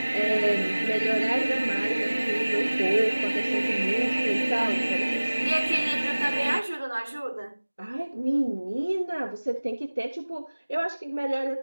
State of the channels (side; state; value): both; inverted; correlation -1.00